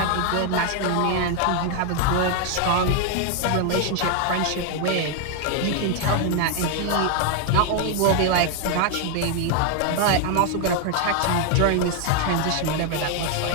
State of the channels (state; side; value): different; both; correlation 0.00